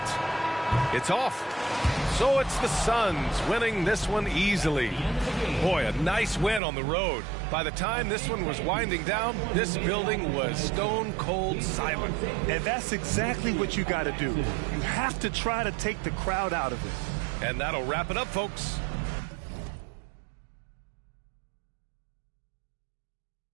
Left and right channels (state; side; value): drops out; left; at 6.6 s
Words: It's off. So it's the Suns winning this one easily. Boy, a nice win on the road. By the time this one was winding down, this building was stone cold silent. And that's exactly what you got to do. You have to try to take the crowd out of it. And that'll wrap it up, folks.